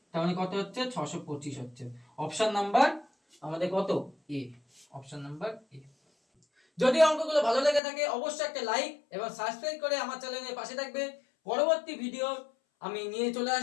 তার মানে কত হচ্ছে 625 হচ্ছে। অপশন নাম্বার আমাদের কত, এ, অপশন নাম্বার এ। যদি অঙ্কগুলো ভালো লেগে থাকে অবশ্যই একটা লাইক এবং সাবস্ক্রাইব করে আমার চ্যানেলের পাশে থাকবে। পরবর্তী ভিডিও আমি নিয়ে চলে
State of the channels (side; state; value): right; drops out; at 7.8 s